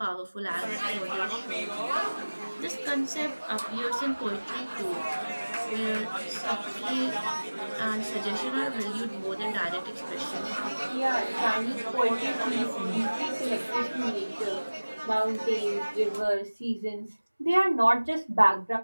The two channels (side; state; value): both; inverted; correlation -1.00